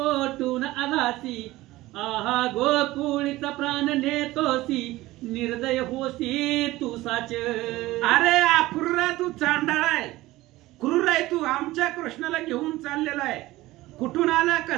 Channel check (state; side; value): quieter; left; 17.9 dB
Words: आलासी आहा गोकुळीचा प्राण नेतोसी निर्दय होसी तू साच. अरे अक्रूरा तू चांडाळ आहे, क्रूर आहे तू. आमच्या कृष्णाला घेऊन चाललेला आहे. कुठून आला